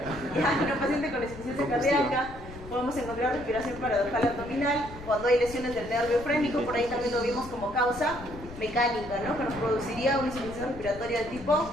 En un paciente con insuficiencia cardíaca podemos encontrar respiración paradojal abdominal. Cuando hay lesiones del nervio frénico, por ahí también lo vimos como causa mecánica, ¿no? Que nos produciría una insuficiencia respiratoria de tipo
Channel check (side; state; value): left; noise; rumble, 15 dB below the sound